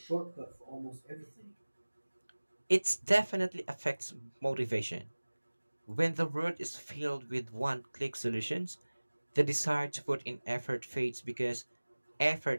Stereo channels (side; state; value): both; inverted; correlation -1.00